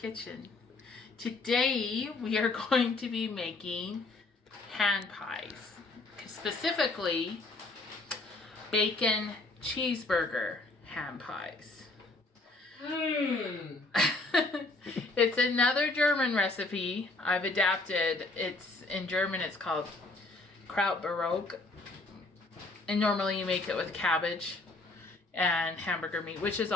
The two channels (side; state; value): right; quieter; 3.1 dB